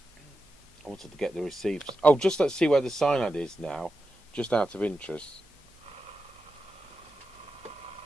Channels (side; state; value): both; normal; correlation 0.89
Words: I wanted to get the receives. Oh, just let's see where the SINAD is now, just out of interest.